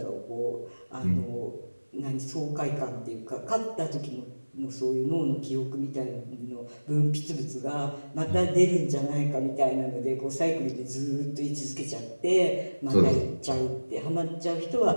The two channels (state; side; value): inverted; both; correlation -1.00